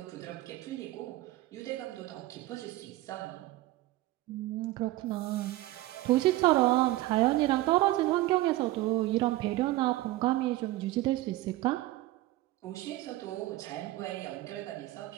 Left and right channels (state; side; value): quieter; left; 16.9 dB